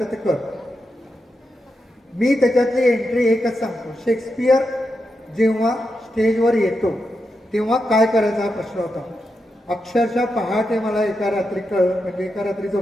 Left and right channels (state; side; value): normal; both; correlation 0.87